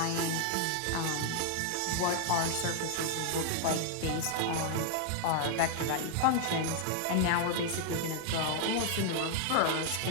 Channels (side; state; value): both; different; correlation 0.00